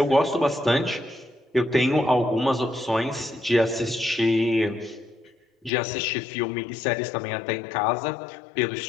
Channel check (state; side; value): drops out; right; at 5.7 s